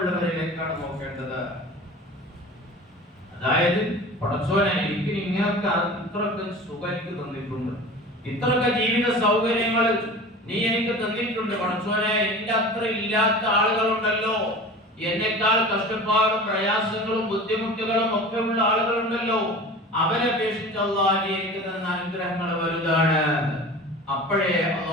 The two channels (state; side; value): normal; both; correlation 0.37